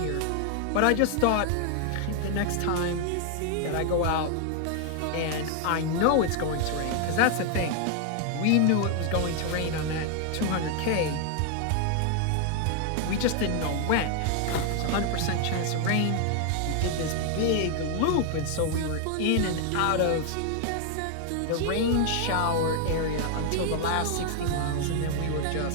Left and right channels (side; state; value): both; different; correlation 0.00